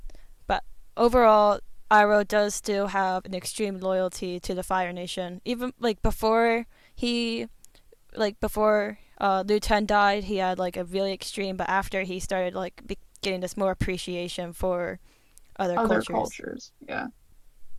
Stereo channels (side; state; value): both; identical; correlation 1.00